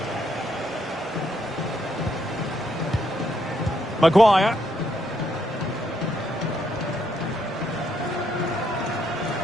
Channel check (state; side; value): normal; both; correlation 0.75